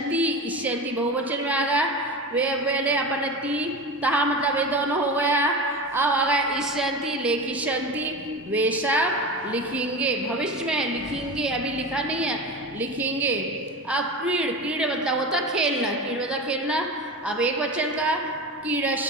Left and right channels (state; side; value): normal; both; correlation 0.27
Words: इष्यन्ति बहुवचन में आ गया। वे पहले अपन ती तहा मतलब वे दोनों हो गया। अब आ गया इष्यन्ति लेखिष्यन्ति वे सब लिखेंगे। भविष्य में लिखेंगे, अभी लिखा नहीं है, लिखेंगे। अब क्रीड़ मतलब होता खेलना, क्रीड़ मतलब खेलना। अब एक वचन का